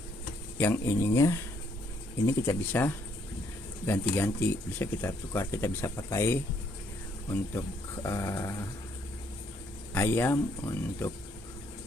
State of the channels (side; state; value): both; normal; correlation 0.69